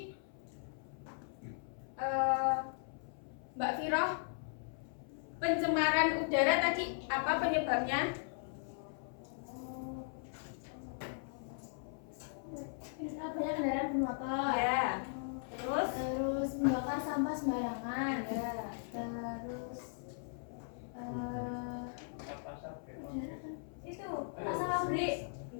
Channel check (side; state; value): right; silent; 52 dB below the other